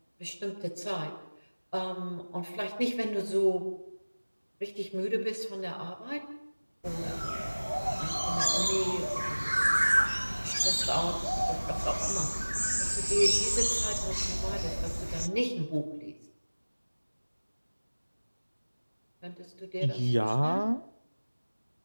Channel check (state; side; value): inverted; both; correlation -1.00